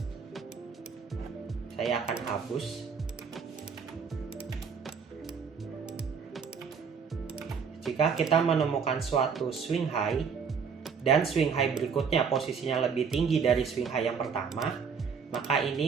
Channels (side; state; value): left; quieter; 6.2 dB